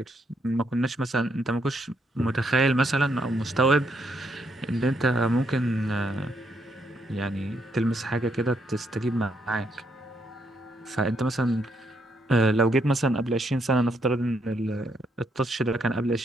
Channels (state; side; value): normal; both; correlation 0.75